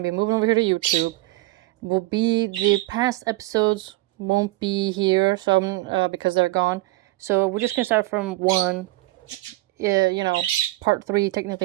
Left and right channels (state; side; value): quieter; left; 19.4 dB